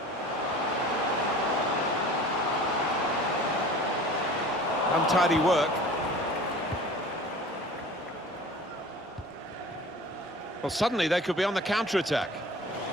Untidy work. Well, suddenly they could be on the counter-attack.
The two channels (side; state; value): both; normal; correlation 0.42